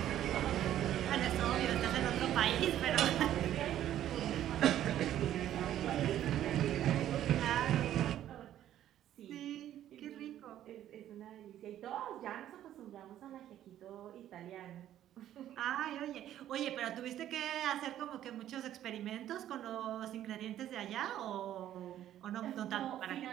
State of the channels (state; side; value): quieter; left; 11.9 dB